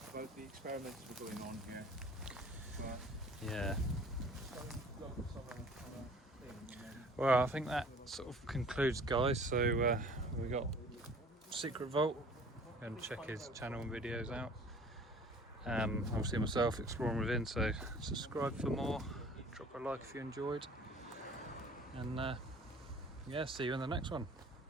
about the experiments that are going on here. Yeah. Well, I think that sort of concludes, guys. So we got Secret Vault. Go and check his channel and videos out. Obviously myself, Exploring Within. So subscribe for more. Drop a like if you enjoyed. And yeah, see you in the next one.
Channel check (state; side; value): normal; both; correlation 0.50